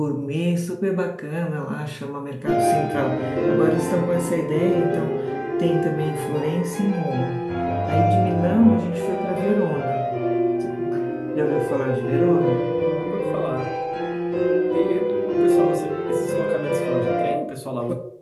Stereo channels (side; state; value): both; identical; correlation 1.00